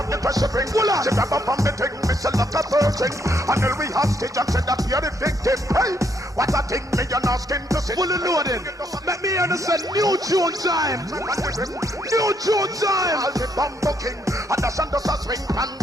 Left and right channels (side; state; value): both; normal; correlation 0.73